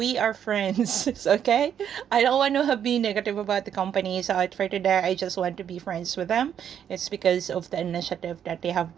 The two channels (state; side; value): quieter; left; 9.0 dB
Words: are friends, okay? I don't want to be negative about the company, so for today, I just want to be friends with them. It's because of the initiative that they have